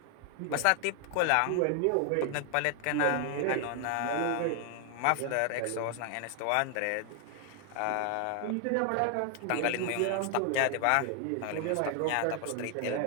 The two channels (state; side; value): different; both; correlation 0.00